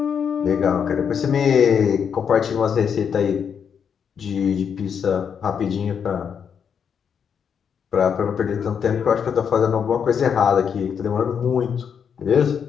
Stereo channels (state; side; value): quieter; right; 7.3 dB